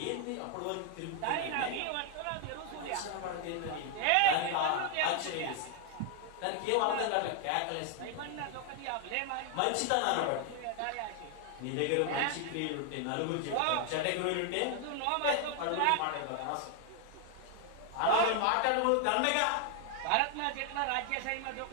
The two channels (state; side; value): different; both; correlation 0.00